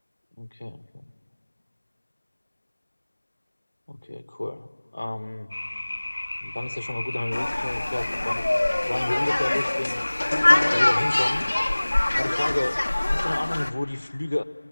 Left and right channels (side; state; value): both; inverted; correlation -1.00